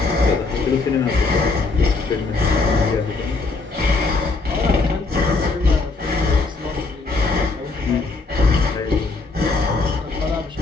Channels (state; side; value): quieter; right; 3.8 dB